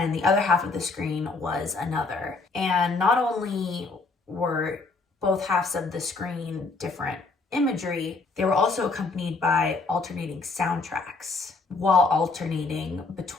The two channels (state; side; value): quieter; right; 3.9 dB